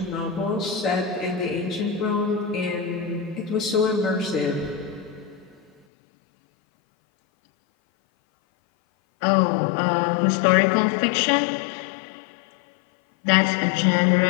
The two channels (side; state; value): right; drops out; at 5.7 s